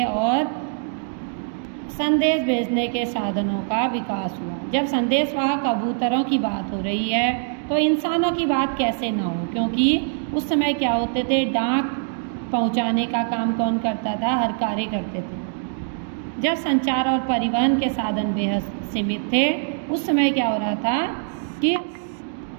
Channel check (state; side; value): silent; left; digital silence